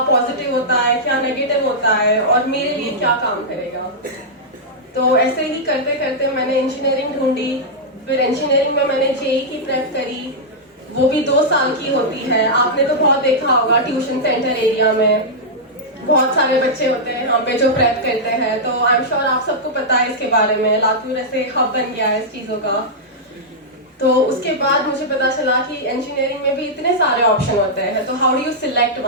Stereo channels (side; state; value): both; normal; correlation -0.08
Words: पॉजिटिव होता है, क्या नेगेटिव होता है और मेरे लिए क्या काम करेगा। तो ऐसे ही करते करते मैंने इंजीनियरिंग ढूंढी। फिर इंजीनियरिंग में मैंने जेई की प्रेप करी, वो भी 2 साल की होती है। आपने तो बहुत देखा होगा ट्यूशन सेंटर एरिया में बहुत सारे बच्चे होते हैं यहाँ पे जो प्रेप करते हैं। तो आई एम श्योर आप सबको पता है इसके बारे में, लातूर ऐसे हब बन गया है इस चीज़ों का। तो उसके बाद मुझे पता चला कि इंजीनियरिंग में भी इतने सारे ऑप्शन होते हैं, तो how do you select